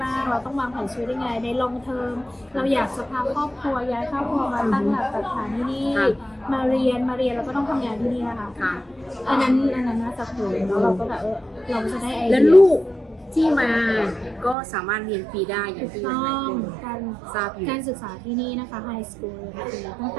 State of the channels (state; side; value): drops out; left; at 14.6 s